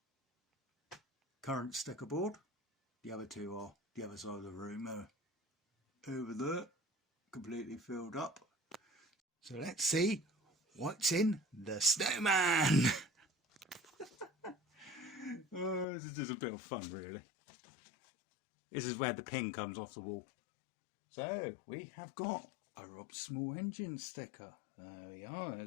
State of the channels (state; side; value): drops out; right; at 15.9 s